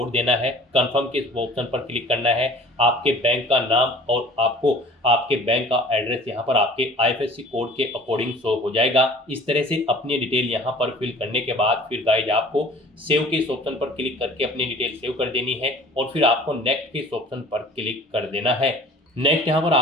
देना है, कंफर्म के ऑप्शन पर क्लिक करना है, आपके बैंक का नाम और आपको आपके बैंक का एड्रेस यहाँ पर आपके आईएफएससी कोड के अकॉर्डिंग शो हो जाएगा। इस तरह से अपनी डिटेल यहाँ पर फिल करने के बाद फिर गाइज आपको सेव के इस ऑप्शन पर क्लिक करके अपनी डिटेल सेव कर देनी है और फिर आपको नेक्स्ट के इस ऑप्शन पर क्लिक कर देना है। नेक्स्ट यहाँ पर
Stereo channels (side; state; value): both; normal; correlation 0.47